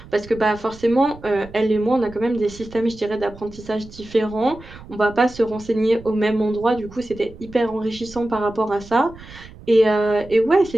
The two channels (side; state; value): right; noise; rumble, 19 dB below the sound